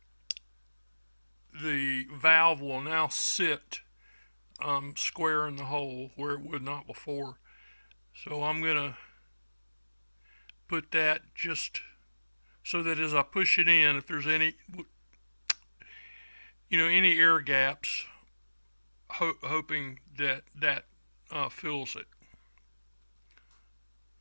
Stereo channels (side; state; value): both; inverted; correlation -1.00